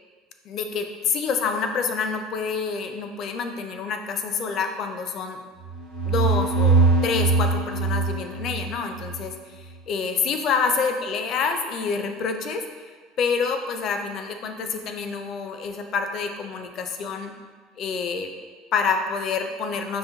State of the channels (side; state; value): both; normal; correlation 0.35